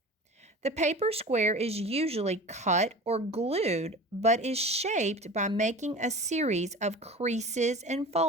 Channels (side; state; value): both; normal; correlation 0.36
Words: The paper square is usually cut or glued, but is shaped by making a series of creases and